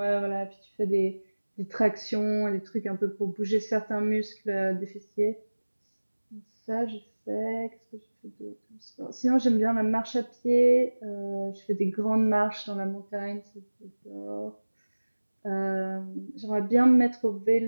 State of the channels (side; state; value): both; inverted; correlation -1.00